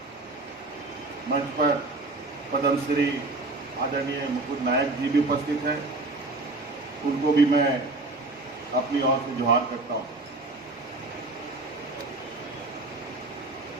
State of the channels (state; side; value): quieter; left; 3.1 dB